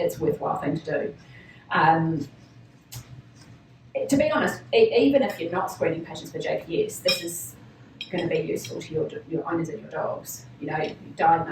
a worthwhile thing to do. To be honest, even if you're not screening patients for JPS, this is going to be useful to your owners and your dogs. You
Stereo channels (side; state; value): both; identical; correlation 1.00